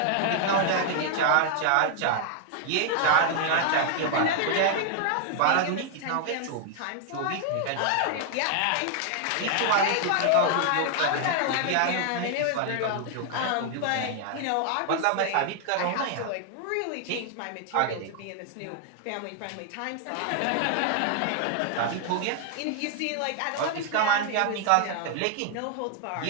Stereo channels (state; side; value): different; both; correlation 0.00